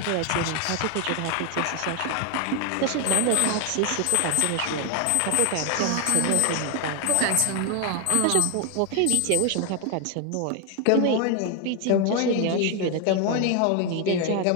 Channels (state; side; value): different; both; correlation 0.01